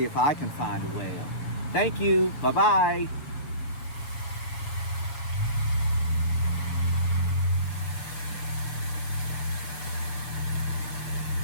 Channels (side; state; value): right; late; 6.6 ms